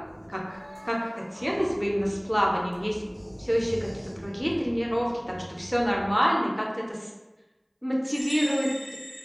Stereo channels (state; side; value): identical; both; correlation 1.00